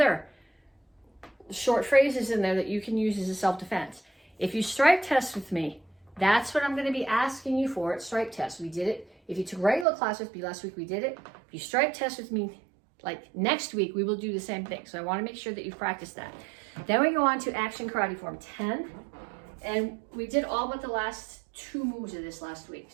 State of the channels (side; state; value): left; drops out; at 9.9 s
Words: short phrases in there that you can use as a self-defense. If you strike test with me, that's what I'm going to be asking you for at strike test. We did it. If you took regular class with me last week, we did it. If you strike test with me, like next week, we will do the same thing. So I want to make sure that you practice that. Then we go on to Action Karate Form 10 And we did all but the last 2 moves of this last week.